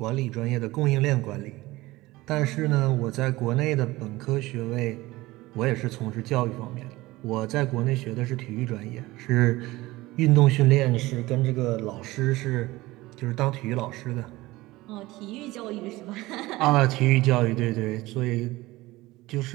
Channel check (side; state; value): left; quieter; 19.3 dB